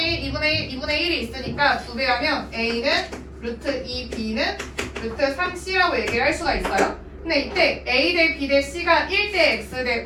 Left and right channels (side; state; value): both; identical; correlation 1.00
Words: 1, 2분의 1, 2분의 1이 있으니까 2배 하면 A는 루트 2, B는 루트 3C라고 얘기를 할 수가 있어요. 근데 이때 A 대 B 대 C가 1 대 X 대